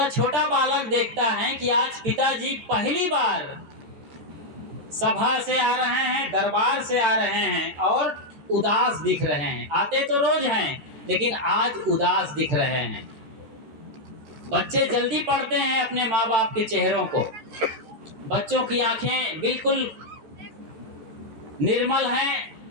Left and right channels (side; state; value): left; late; 13 ms